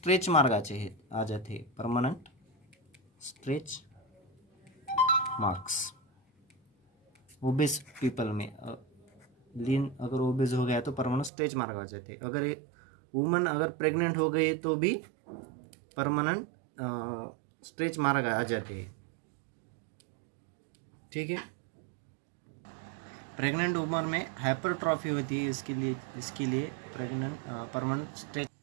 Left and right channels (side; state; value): left; drops out; at 11.3 s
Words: मार्क आ जाते हैं, permanent stretch marks obeys people में। लीन अगर ओबेज हो गया तो परमानेंट स्ट्रेच मार्क आ जाते हैं। अगर एक वुमन अगर प्रेग्नेंट हो गई तो भी परमानेंट स्ट्रेच मार्क आ जाते हैं, ठीक है। प्रेग्नेंट वुमन में हाइपरट्रॉफी होती है, इसके लिए प्रेग्नेंट परमानेंट स्ट्रेच।